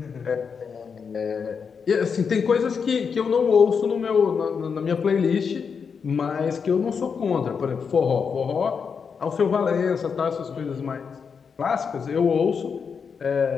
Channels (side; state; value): right; quieter; 6.1 dB